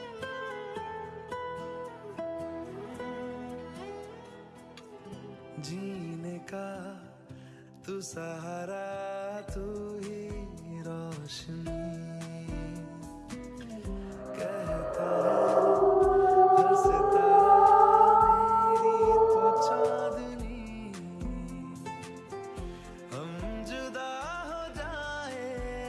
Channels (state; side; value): identical; both; correlation 1.00